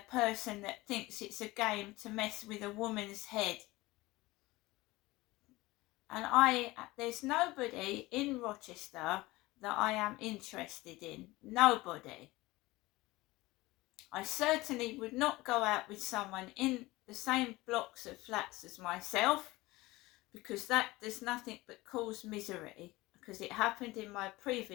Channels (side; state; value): right; quieter; 20.1 dB